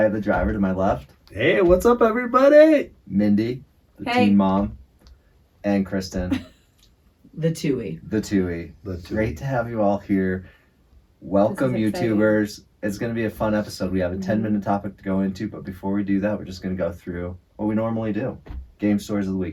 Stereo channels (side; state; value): both; identical; correlation 1.00